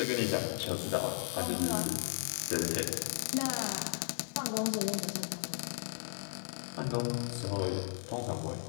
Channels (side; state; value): right; silent; digital silence